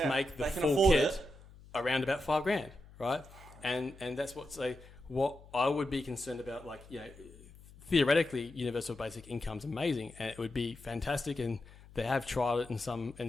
make the full kit around about $5,000, right? And that's what I would be concerned about. Like, theoretically, universal basic income's amazing, and it would be fantastic. And they have tried it in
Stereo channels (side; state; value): left; noise; hum, 21 dB below the sound